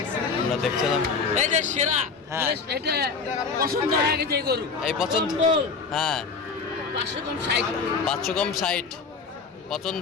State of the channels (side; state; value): right; quieter; 5.0 dB